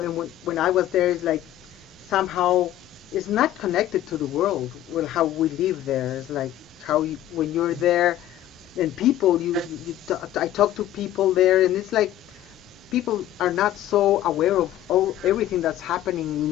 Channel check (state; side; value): quieter; right; 12.7 dB